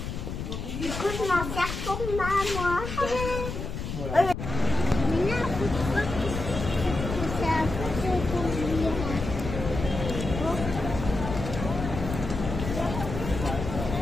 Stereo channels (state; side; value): noise; left; rumble, 6 dB below the sound